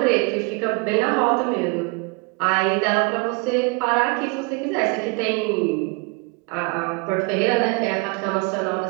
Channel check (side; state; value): left; quieter; 30.0 dB